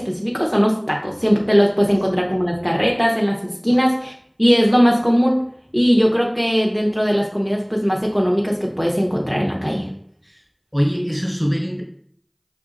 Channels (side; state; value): both; identical; correlation 1.00